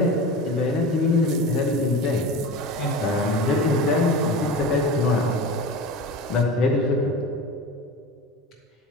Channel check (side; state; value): both; normal; correlation 0.30